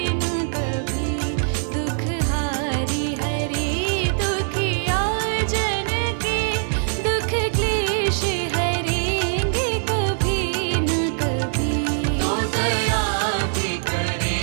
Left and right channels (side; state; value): left; silent; 62 dB below the other